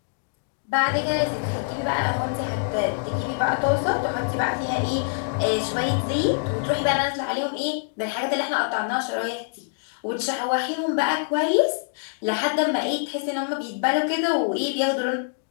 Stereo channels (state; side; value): silent; right; digital silence